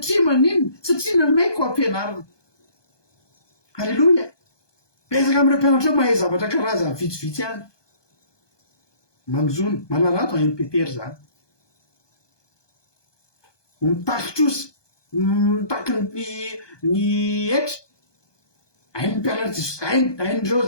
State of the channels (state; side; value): late; right; 1.2 ms